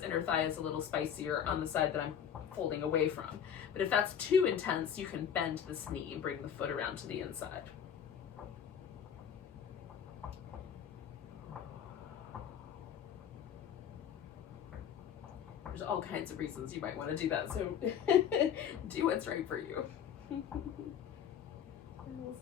inner thigh is a little spicier on the side that I'm folding away from, but if that's too intense, you can bend this knee and bring the foot around to the inside. There's all kinds of reasons you might want to do that, so do what's right for you. And we'll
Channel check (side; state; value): right; quieter; 8.6 dB